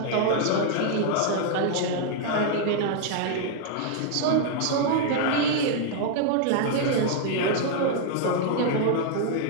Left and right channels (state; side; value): different; both; correlation -0.01